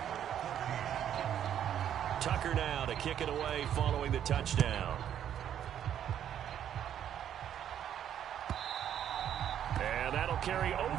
Tucker now to kick it away following the touchdown. And that'll carry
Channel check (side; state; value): left; quieter; 9.9 dB